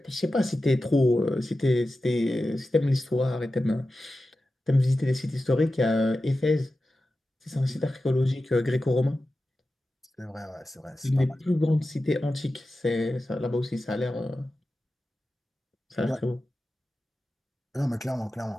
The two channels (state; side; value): normal; both; correlation 0.93